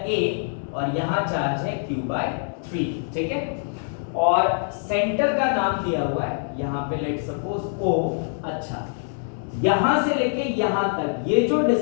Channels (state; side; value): silent; right; digital silence